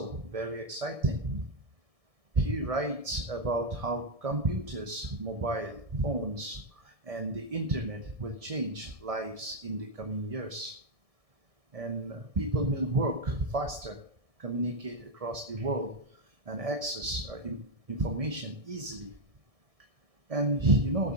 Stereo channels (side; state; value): left; late; 1.7 ms